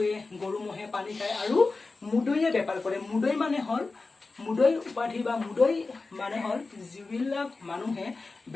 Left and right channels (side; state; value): right; quieter; 3.8 dB